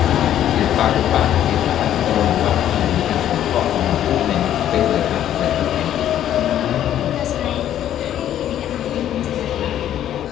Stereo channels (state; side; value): quieter; right; 11.2 dB